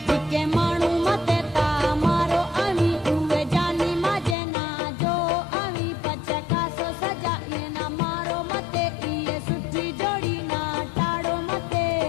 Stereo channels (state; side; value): drops out; right; at 4.4 s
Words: जिके मानू मते ता मारो आवी उवे जानी मजे ना जो आवी पछे कासो सजा ये ना मारो मते ये सुठी जोड़ी ना टाड़ो मते